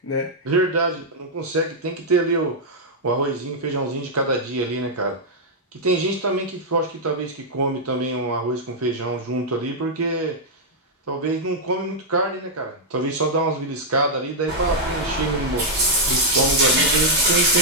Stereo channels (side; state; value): both; normal; correlation -0.04